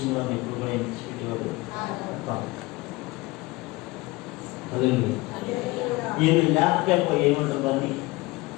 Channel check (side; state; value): right; quieter; 22.0 dB